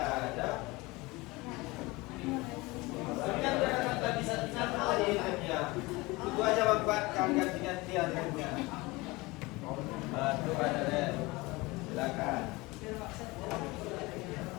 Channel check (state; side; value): quieter; right; 22.7 dB